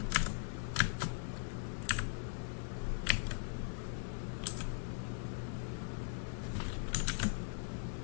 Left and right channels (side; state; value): right; silent; digital silence